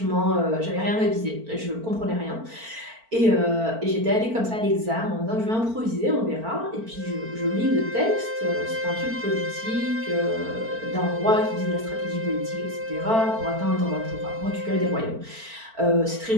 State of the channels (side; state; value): left; late; 4.4 ms